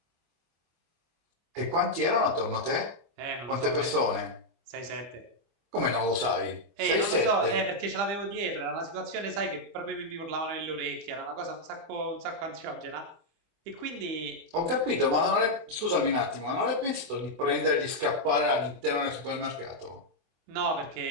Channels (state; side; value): late; left; 24 ms